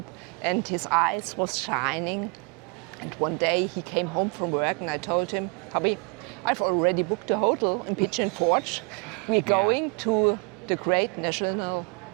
and his eyes was shining. And one day he came home from work and I told him, hubby, I've already booked a hotel in Pigeon Forge. We're going to the Great National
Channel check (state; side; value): quieter; left; 32.3 dB